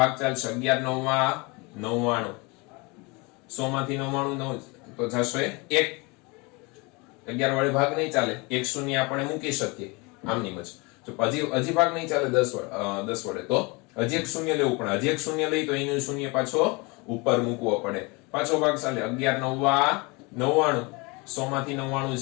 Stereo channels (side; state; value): right; quieter; 27.5 dB